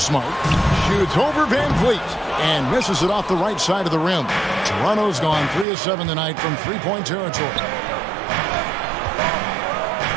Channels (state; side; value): drops out; left; at 5.7 s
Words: Shoots over Van Vliet. And misses it off the right side of the rim. Toronto's gone 3 of 7 tonight from three-point territory.